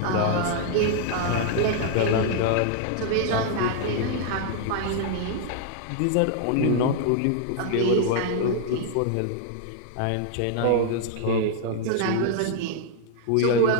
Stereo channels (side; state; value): both; different; correlation -0.01